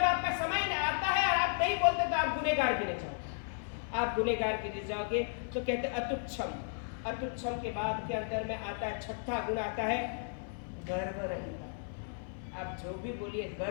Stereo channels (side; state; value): right; silent; 55 dB below the other